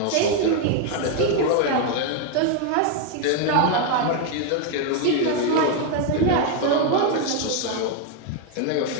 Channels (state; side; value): different; both; correlation 0.01